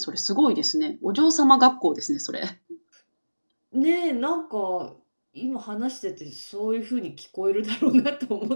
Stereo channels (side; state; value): both; inverted; correlation -1.00